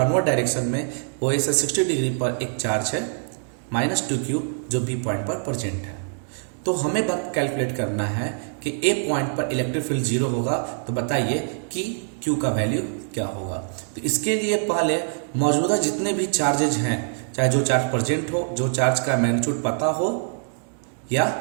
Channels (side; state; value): left; silent; digital silence